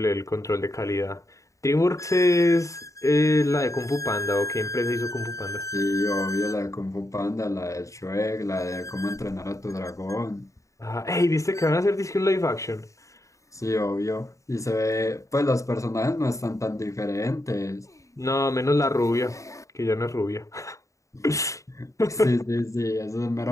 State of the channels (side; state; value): right; late; 0.15 ms